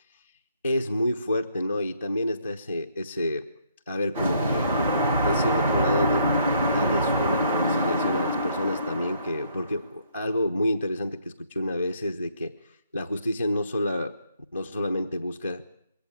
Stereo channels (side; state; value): both; inverted; correlation -0.68